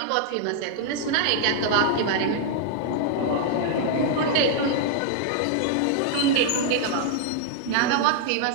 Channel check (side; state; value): both; different; correlation -0.01